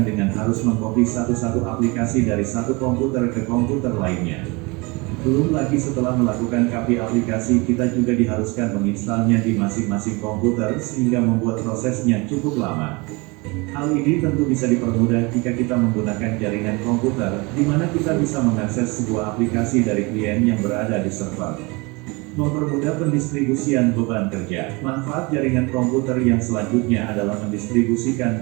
dengan harus mengcopy satu-satu aplikasi dari satu komputer ke komputer lainnya. Belum lagi setelah melakukan copy aplikasi, kita juga diharuskan menginstalnya di masing-masing komputer sehingga membuat prosesnya cukup lama. Hal ini tentu bisa dipermudah jika kita menggunakan jaringan komputer, di mana kita bisa mengakses sebuah aplikasi dari klien yang berada di server. Mempermudah pendistribusian beban kerja. Manfaat jaringan komputer yang selanjutnya adalah mendistribusikan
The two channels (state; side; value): quieter; left; 26.6 dB